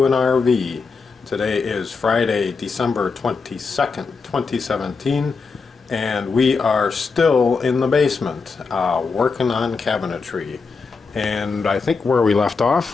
an RV. Today is Friday, December 22nd, 2017, and we are still in the basement working on cabinetry. And I think where we left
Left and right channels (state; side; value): quieter; right; 4.7 dB